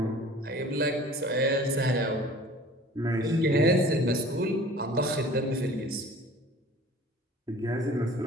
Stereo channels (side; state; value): both; normal; correlation 0.45